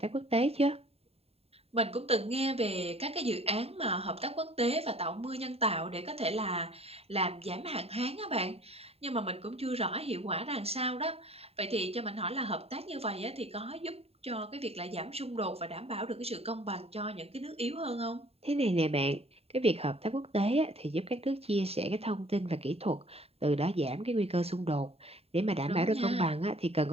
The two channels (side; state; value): left; late; 0.29 ms